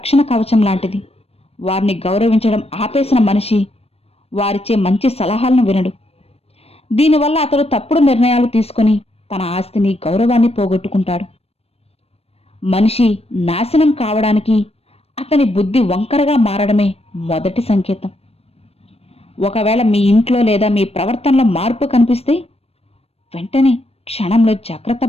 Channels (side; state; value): right; late; 0.29 ms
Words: కవచం లాంటిది. వారిని గౌరవించడం ఆపేసిన మనిషి వారిచ్చే మంచి సలహాలను వినడు. దీనివల్ల అతడు తప్పుడు నిర్ణయాలు తీసుకొని తన ఆస్తిని గౌరవాన్ని పోగొట్టుకుంటాడు. మనిషి నాశనం కావడానికి అతని బుద్ధి వంకరగా మారడమే మొదటి సంకేతం. ఒకవేళ మీ ఇంట్లో లేదా మీ ప్రవర్తనలో మార్పు కనిపిస్తే వెంటనే క్షణంలో జాగ్రత్త